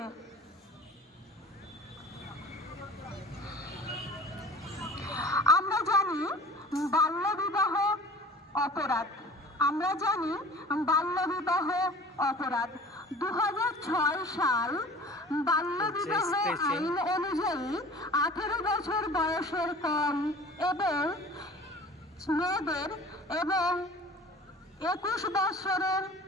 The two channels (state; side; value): normal; both; correlation 0.43